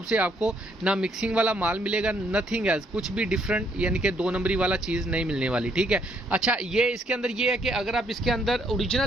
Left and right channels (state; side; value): normal; both; correlation 0.70